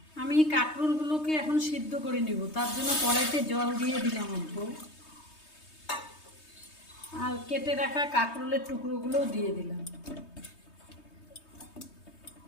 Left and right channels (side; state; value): right; late; 3.2 ms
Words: আমি কাঁকরোলগুলোকে এখন সিদ্ধ করে নিব। তার জন্য কড়াইতে জল দিয়ে দিলাম অল্প, আর কেটে রাখা কাঁকরোলের টুকরোগুলোও দিয়ে দিলাম।